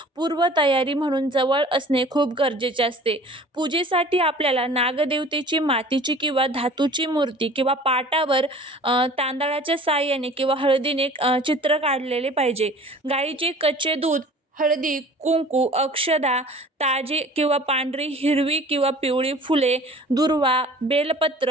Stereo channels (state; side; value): normal; both; correlation 0.46